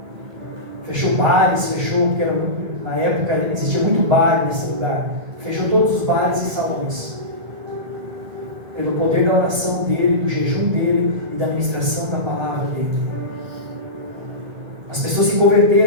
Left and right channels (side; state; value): left; late; 1.9 ms